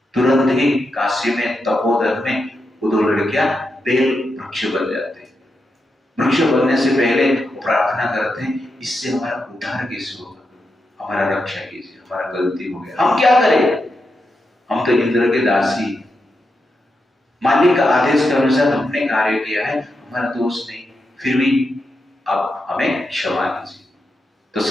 तुरंत ही काशी में तपोवन में वो दो लड़कियां बेल वृक्ष बन जाते हैं। वृक्ष बनने से पहले वो प्रार्थना करते हैं, इससे हमारा उद्धार कैसे होगा, हमारा रक्षा कीजिए, हमारा गलती हो गया, हम क्या करें, हम तो इंद्र के दासी, मालिक का आदेश के अनुसार हमने कार्य किया है, हमारा दोष नहीं, फिर भी आप हमें क्षमा कीजिए। तो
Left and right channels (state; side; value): normal; both; correlation 0.86